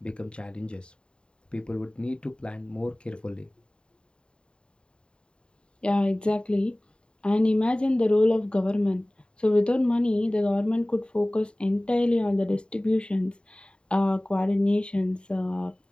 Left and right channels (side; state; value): right; late; 0.051 ms